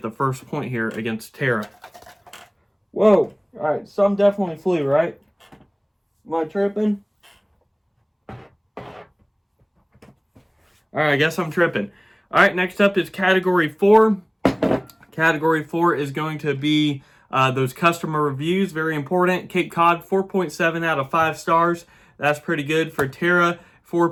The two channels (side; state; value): both; identical; correlation 1.00